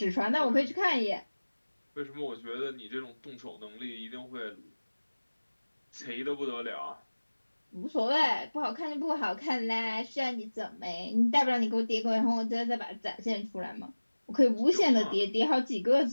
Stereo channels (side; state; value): both; inverted; correlation -1.00